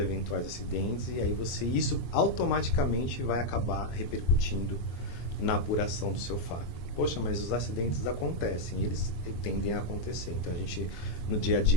acidentes, e aí isso automaticamente vai acabar repercutindo na apuração do seu FAP. Poxa, mas os acidentes acontecem, eles tendem a acontecer. Então, a gente, no dia a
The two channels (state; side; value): late; right; 23 ms